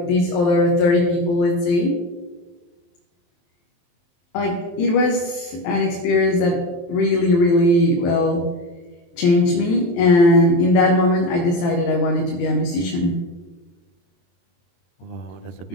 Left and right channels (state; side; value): late; right; 23 ms